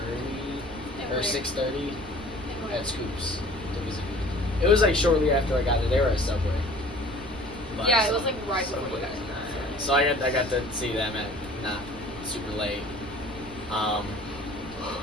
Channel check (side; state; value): both; normal; correlation 0.48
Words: 5:30 or 6:30 at Scoops to visit. It was like shortly after I got there. They were at Subway. But, yeah, it was like right before you guys. So I got to see them at not super late. Yeah,